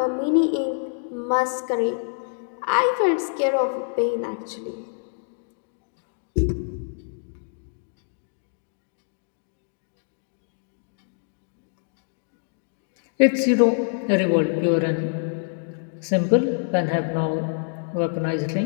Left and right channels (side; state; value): right; silent; digital silence